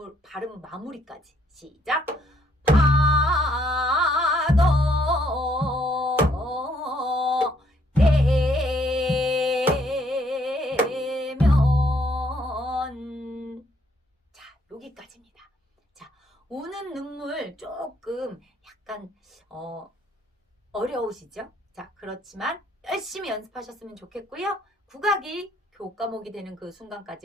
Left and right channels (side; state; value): both; normal; correlation 0.69